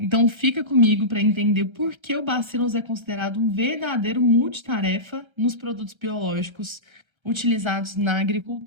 fica comigo para entender por que o Bacillus é considerado um verdadeiro multitarefa nos produtos biológicos utilizados na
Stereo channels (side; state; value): left; late; 1.3 ms